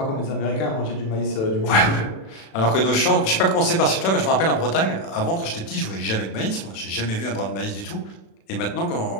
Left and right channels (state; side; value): late; right; 36 ms